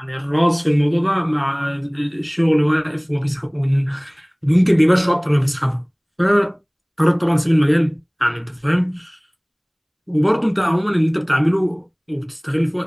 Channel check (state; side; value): identical; both; correlation 1.00